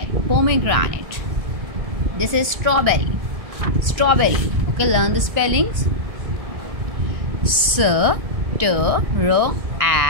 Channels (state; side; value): late; left; 1.6 ms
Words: Pomegranate. This is strawberry. Strawberry. Okay, learn the spellings. S-T-R-A